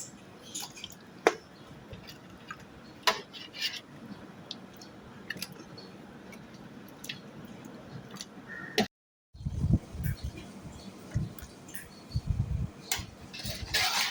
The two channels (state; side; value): identical; both; correlation 1.00